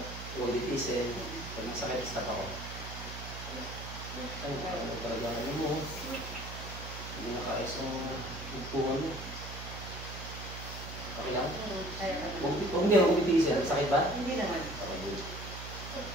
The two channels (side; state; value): right; noise; hum, 9 dB below the sound